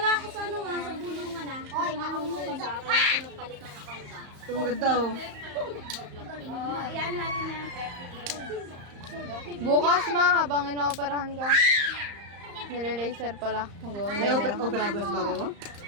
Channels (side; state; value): left; late; 35 ms